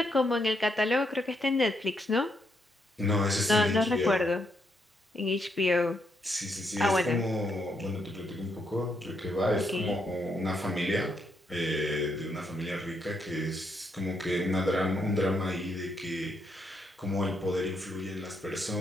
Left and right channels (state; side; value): normal; both; correlation 0.77